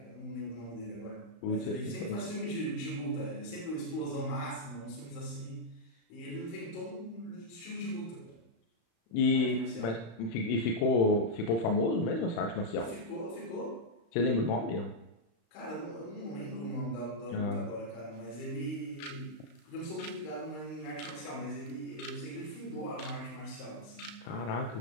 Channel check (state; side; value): late; right; 35 ms